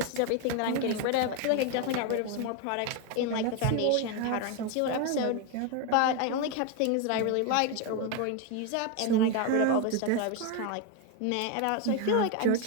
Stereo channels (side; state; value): both; different; correlation 0.02